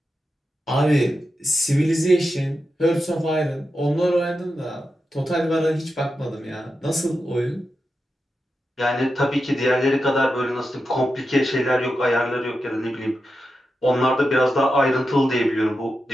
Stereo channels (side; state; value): both; normal; correlation 0.89